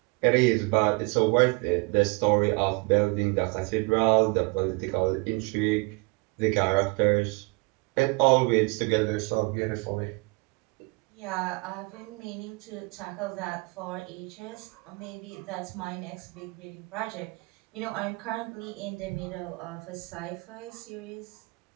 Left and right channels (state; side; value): quieter; left; 28.9 dB